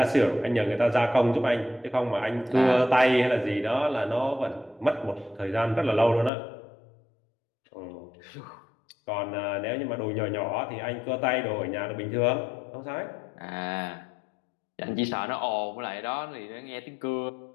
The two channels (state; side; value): drops out; right; at 6.3 s